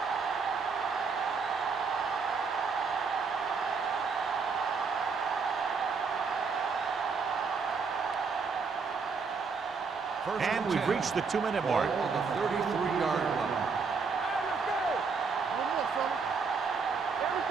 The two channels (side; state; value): left; quieter; 5.1 dB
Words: And we've reached the 2-minute mark. On the 33-yard line.